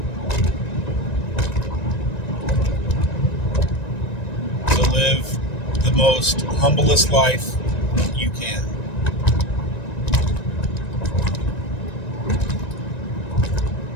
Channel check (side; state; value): right; late; 1.9 ms